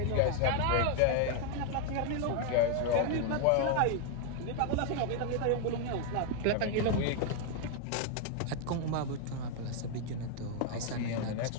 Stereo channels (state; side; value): different; both; correlation 0.01